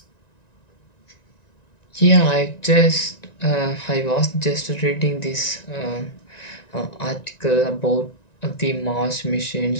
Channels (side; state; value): right; late; 1.9 ms